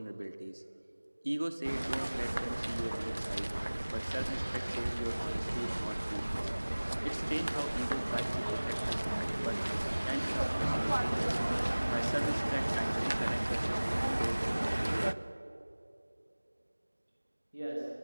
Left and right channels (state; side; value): inverted; both; correlation -1.00